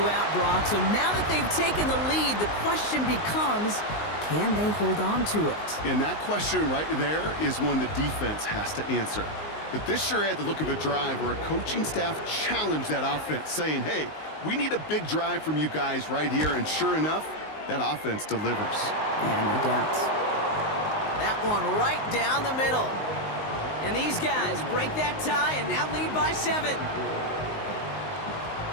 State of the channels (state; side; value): late; right; 19 ms